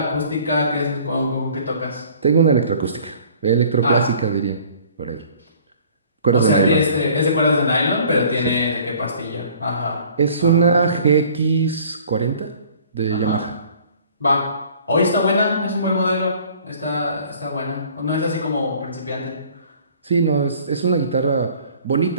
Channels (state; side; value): inverted; both; correlation -0.52